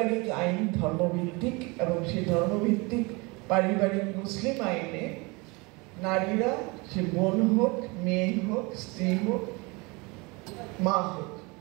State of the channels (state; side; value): quieter; left; 26.9 dB